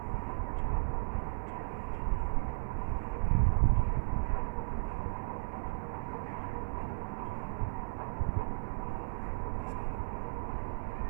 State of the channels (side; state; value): left; silent; 54 dB below the other